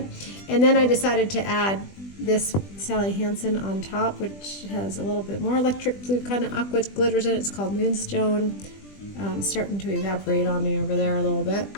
And then I decided to add this Sally Hansen on top, which has a little bit more electric blue kind of aqua glitters in it. It's called Moonstone. Starting to evaporate on me over there a little bit.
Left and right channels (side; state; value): right; late; 20 ms